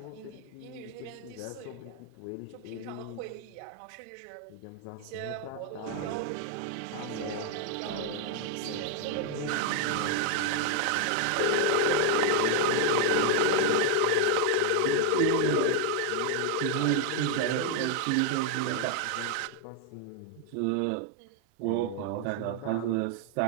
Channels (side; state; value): both; different; correlation 0.00